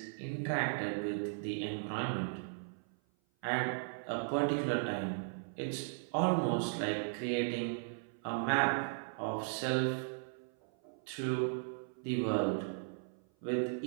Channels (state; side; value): silent; left; 53 dB below the other